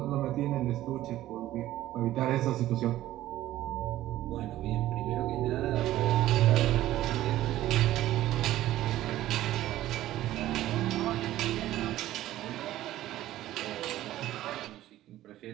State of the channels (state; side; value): quieter; left; 14.4 dB